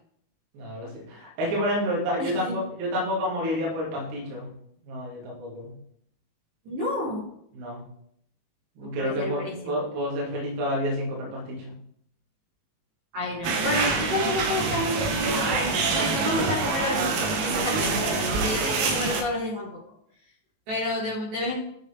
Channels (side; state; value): left; late; 19 ms